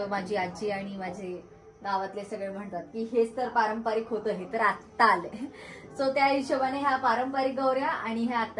माझी आजी आणि माझे गावातले सगळे म्हणतात की हेच तर पारंपरिक होतं, हे तर आत्ता आलंय. सो त्या हिशोबाने ह्या पारंपरिक गौऱ्या आणि ह्या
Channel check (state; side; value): identical; both; correlation 1.00